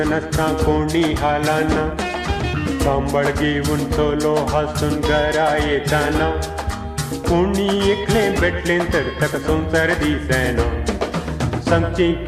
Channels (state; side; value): identical; both; correlation 1.00